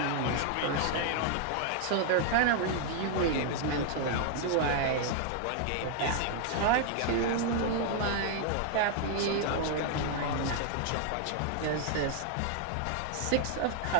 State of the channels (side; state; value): both; different; correlation 0.00